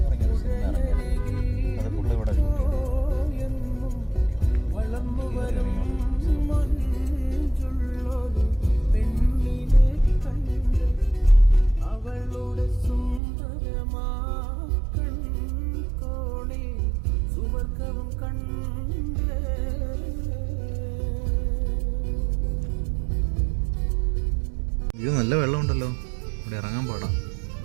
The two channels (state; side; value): drops out; left; at 13.2 s